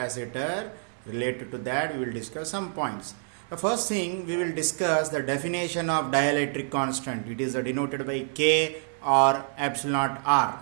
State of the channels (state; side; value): silent; left; 60 dB below the other